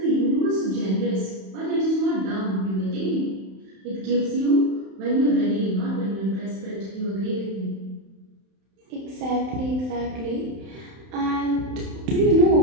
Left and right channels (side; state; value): left; late; 31 ms